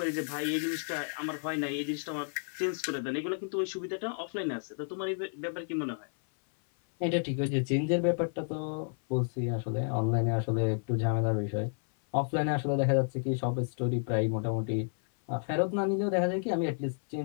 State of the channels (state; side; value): silent; right; 57 dB below the other